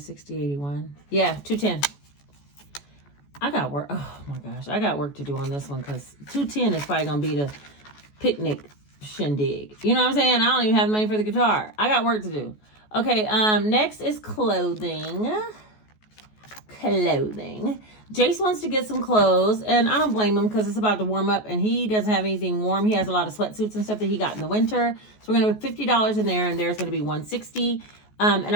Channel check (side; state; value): right; late; 14 ms